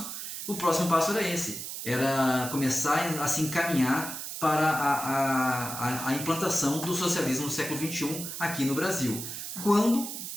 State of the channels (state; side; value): noise; right; hiss, 7 dB below the sound